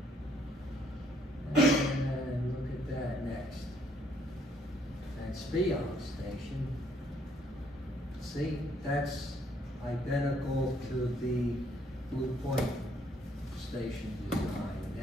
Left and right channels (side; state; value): both; normal; correlation 0.67